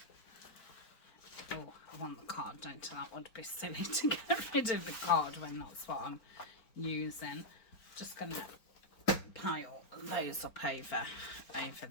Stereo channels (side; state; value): right; late; 4.4 ms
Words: I want the card, don't I? That would be silly to get rid of the card when that's what I'm using. Just gonna pile those up over